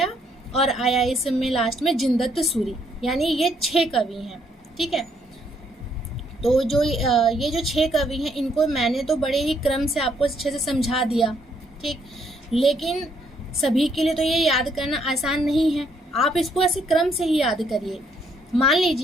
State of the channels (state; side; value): normal; both; correlation 0.70